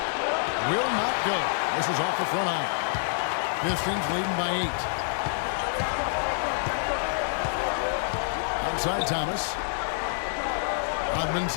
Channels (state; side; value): silent; right; digital silence